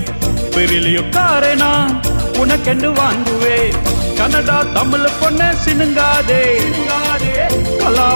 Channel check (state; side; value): inverted; both; correlation -1.00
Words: பெரிலியோ காரேனா உனக்கென்று வாங்குவேன் கன்னடா தமிழ் பொண்ணு சினுங்காதே